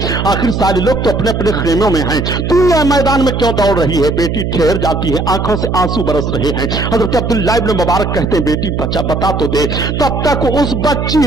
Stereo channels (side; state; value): right; noise; hum, 2 dB below the sound